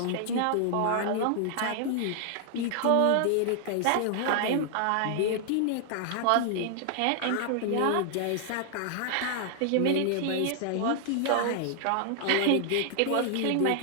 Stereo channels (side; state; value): both; different; correlation 0.00